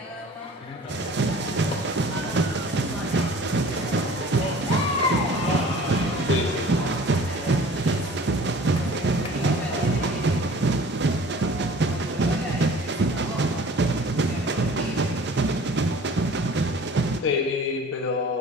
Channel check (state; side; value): normal; both; correlation 0.46